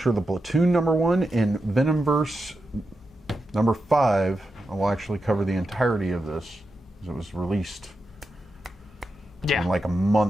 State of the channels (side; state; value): both; normal; correlation 0.88